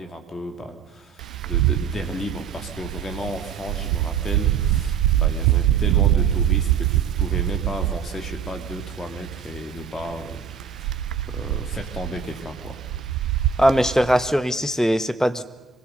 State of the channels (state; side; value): quieter; left; 5.7 dB